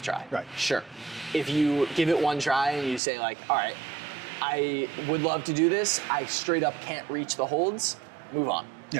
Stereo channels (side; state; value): left; drops out; at 3.0 s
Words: try. Right. Sure. If you give it 1 try and you say like, all right, I would love to do this, I straight up can't reach the holds, move on.